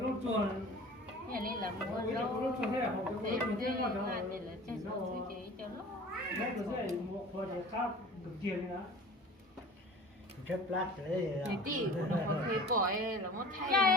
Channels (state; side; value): normal; both; correlation 0.42